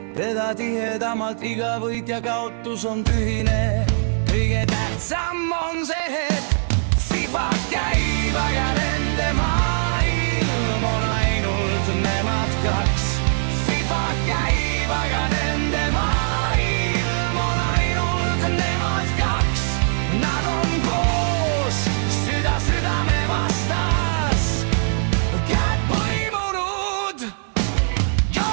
teda tihedamalt, iga võit ja kaotus on tühine. Kõige tähtsam on see hetk, FIFA käib, aga nende maailm on ainult nemad kaks. FIFA käib, aga nende maailm on ainult nemad kaks. Nad on koos, süda südame vastas, käed põimunud.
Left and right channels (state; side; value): silent; left; 65 dB below the other